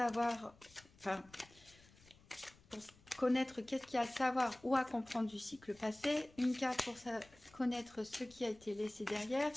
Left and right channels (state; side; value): noise; left; rumble, 26 dB below the sound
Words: enfin, pour connaître qu'est-ce qu'il y a à savoir ou à comprendre du cycle passé, une carte pour connaître ce qui a été laissé derrière,